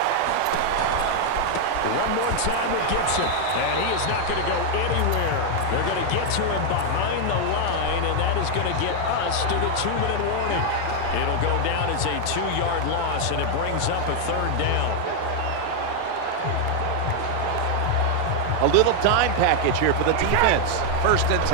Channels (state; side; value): different; both; correlation 0.00